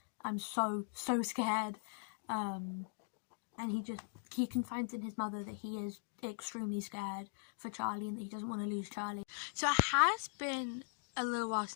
I'm so scared. And he confides in his mother that he is extremely scared for Charlie and that he doesn't want to lose Charlie. So it has been a little while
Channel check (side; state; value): right; silent; digital silence